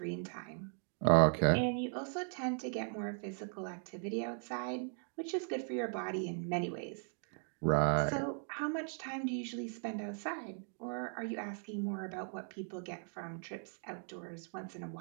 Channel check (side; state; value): left; silent; 52 dB below the other